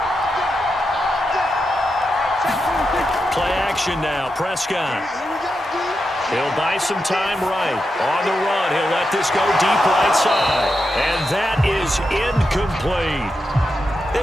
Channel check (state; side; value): normal; both; correlation 0.87